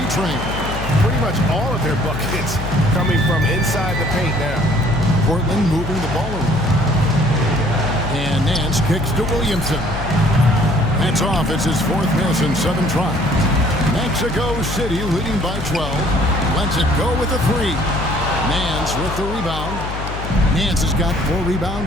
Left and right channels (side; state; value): left; noise; hum, 7 dB below the sound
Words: Pretty much all of their buckets coming from inside the paint now. Portland moving the ball around. And Nance kicks to Williamson. That's off. It's his 4th miss in 7 tries. Mexico City leading by 12. Lets it go with a 3. Nance with the rebound. Nance has got 4